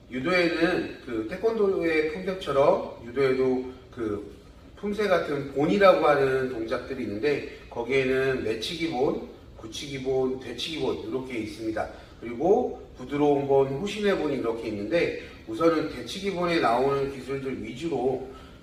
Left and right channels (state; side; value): identical; both; correlation 1.00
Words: 유도에는 태권도의 품격처럼 유도에도 품새 같은 본이라고 하는 동작들이 있는데 거기에는 내치기 본, 굳히기 본, 되치기 본 이렇게 있습니다. 그리고 부드러운 본, 후신의 본이 이렇게 있는데 우선은 되치기 본에 나오는 기술들 위주로